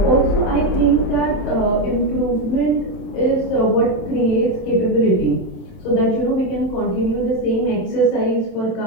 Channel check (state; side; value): late; right; 27 ms